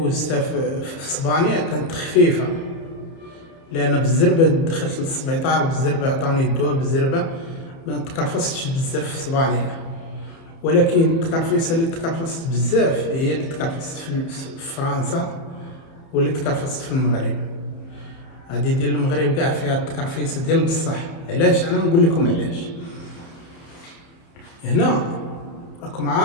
في اسبانيا كانت خفيفه، لان بالزربه دخلت للسبيطار بالزربه، عطاوني الدواء بالزربه، ما تكرفستش بزاف في اسبانيا. ولكن التكرفيسه اللي تكرفست بزاف هي اللي تكرفست في فرنسا واللي تكرفست في المغرب. هادي ديال المغرب كاع فيها التكرفيسه ديال بصح. علاش؟ انا نقول لكم علاش. هنا راكم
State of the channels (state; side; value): late; right; 30 ms